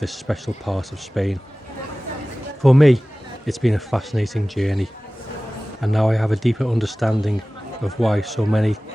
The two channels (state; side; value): normal; both; correlation 0.97